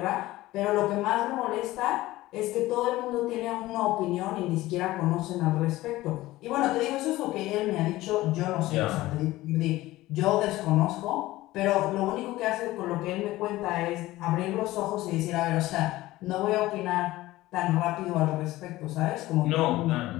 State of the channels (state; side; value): quieter; right; 17.3 dB